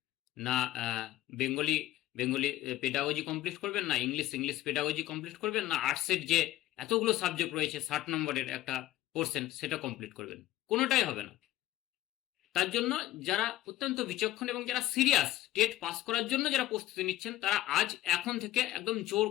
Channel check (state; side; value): quieter; right; 14.5 dB